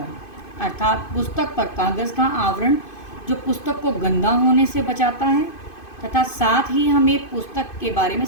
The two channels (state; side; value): late; right; 2.5 ms